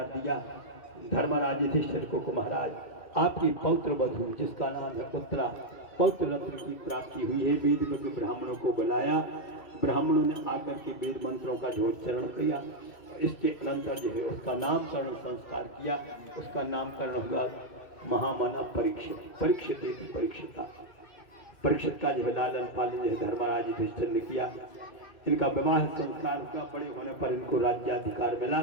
दिया धर्मराज युधिष्ठिर को महाराज आपकी पौत्र वधु जिसका नाम है उत्तरा पौत्र रत्न की प्राप्ति हुई है वेद में ब्राह्मणों को बुलाया ब्राह्मणों ने आकर के वेद मंत्रों का झोचरण किया इसके अनंतर जो है उसका नामकरण संस्कार किया उसका नामकरण हुआ महामना परीक्षित का जो है लालन पालन जो है धर्मराज युधिष्ठिर ने किया इनका विवाह संस्कार हुआ बड़े होने पर इनको राज्याधिकार मिला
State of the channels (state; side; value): late; right; 2.6 ms